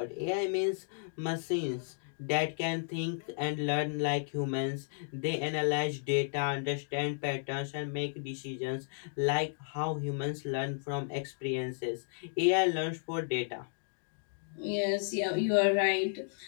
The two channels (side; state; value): right; silent; digital silence